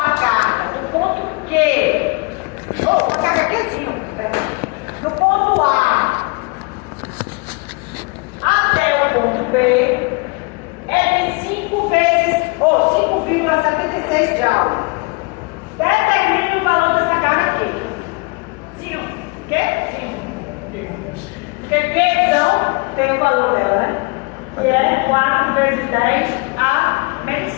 carga do ponto Q, ou uma carga Qzinho, do ponto A até o ponto B, é de 5 vezes, ou 5,76 Joule. Determine o valor dessa carga aqui. 5. O quê? 5. Porque Qzão tem o valor dela, né? Que é 4 vezes 10 a menos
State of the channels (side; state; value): right; quieter; 29.3 dB